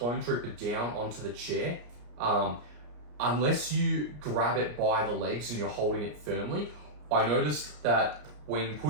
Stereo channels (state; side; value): late; left; 34 ms